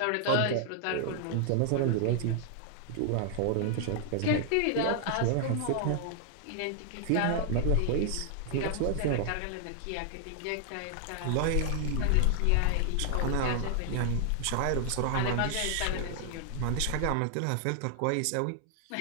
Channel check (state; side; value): different; both; correlation 0.00